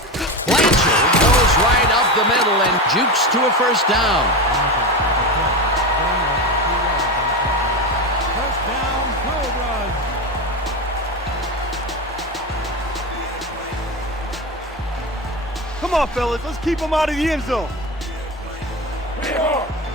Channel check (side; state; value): both; normal; correlation 0.20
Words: Blanchard goes right up the middle and jukes to a first down. First down, Cobras. Come on, fellas. Let's keep them out of the end zone.